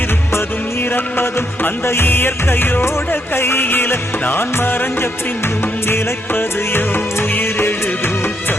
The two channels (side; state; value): both; normal; correlation 0.76